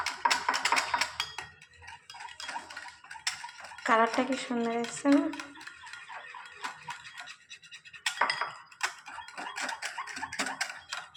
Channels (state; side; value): identical; both; correlation 1.00